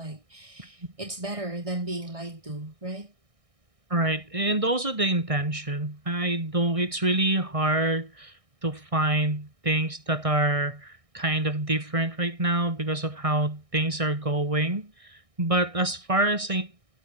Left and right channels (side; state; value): left; late; 1.6 ms